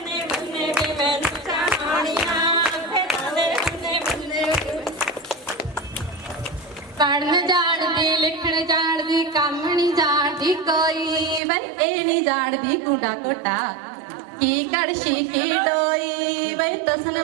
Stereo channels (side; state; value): left; drops out; at 11.4 s